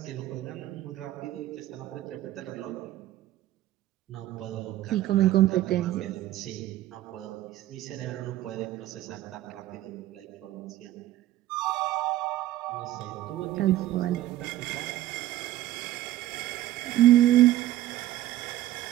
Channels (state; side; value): quieter; left; 14.4 dB